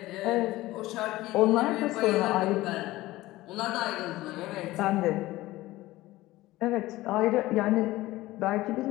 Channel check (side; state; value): right; quieter; 17.7 dB